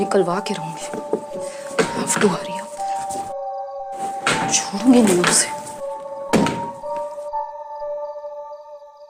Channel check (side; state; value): both; identical; correlation 1.00